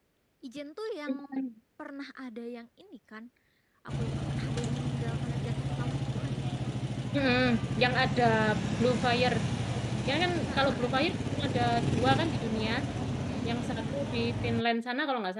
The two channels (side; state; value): both; identical; correlation 1.00